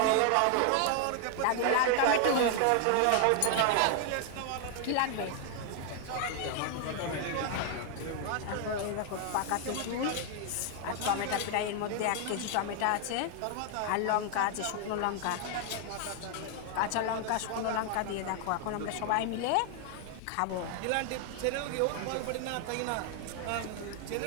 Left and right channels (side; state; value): both; different; correlation 0.00